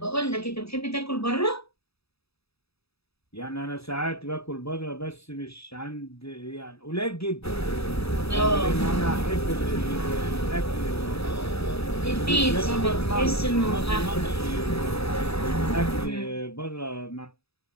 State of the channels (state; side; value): late; right; 0.78 ms